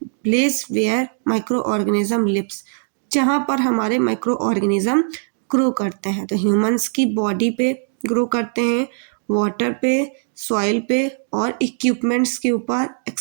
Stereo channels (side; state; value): left; silent; 57 dB below the other